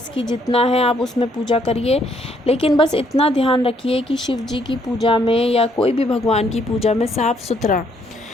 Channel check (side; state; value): both; normal; correlation 0.69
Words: की जितना है आप उसमें पूजा करिए। लेकिन बस इतना ध्यान रखिए कि शिव जी की पूजा में या कोई भी भगवान की पूजा में साफ़ सुथरा